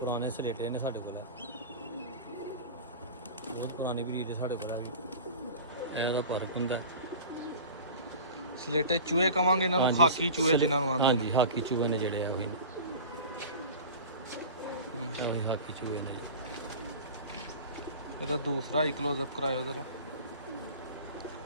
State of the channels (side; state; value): both; inverted; correlation -0.35